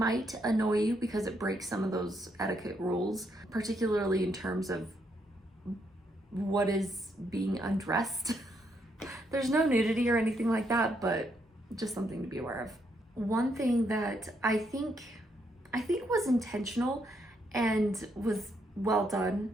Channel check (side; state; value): both; normal; correlation 0.76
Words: annoy you because it breaks some of those etiquette rules, particularly in terms of what is being undressed. There's no nudity or anything like that, but just something to be aware of. One thing that I think was intentional and was well